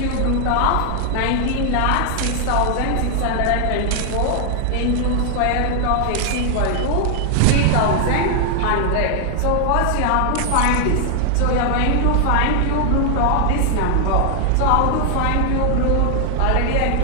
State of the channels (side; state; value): both; different; correlation 0.00